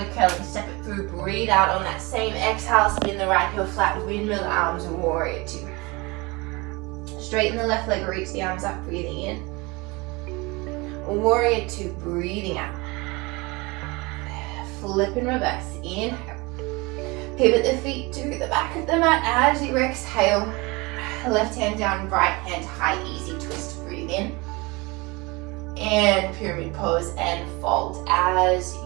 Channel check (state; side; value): quieter; left; 25.1 dB